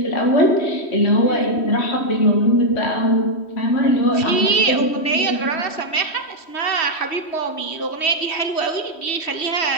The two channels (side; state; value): right; late; 3.1 ms